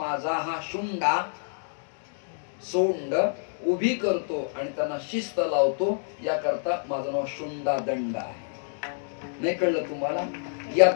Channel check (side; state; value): right; silent; digital silence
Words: हा शुंडा सोंड उभी करतो आणि त्यांना शिस्त लावतो. याकरता माझं नाव शुंडा दंड आहे. नाही कळलं तुम्हाला? या